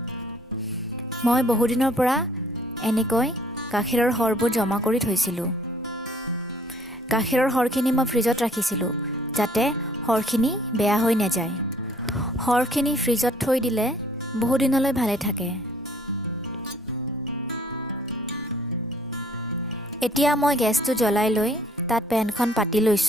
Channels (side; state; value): both; normal; correlation 0.59